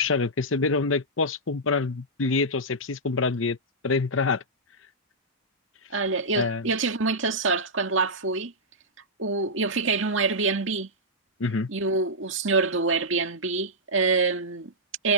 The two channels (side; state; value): both; normal; correlation -0.10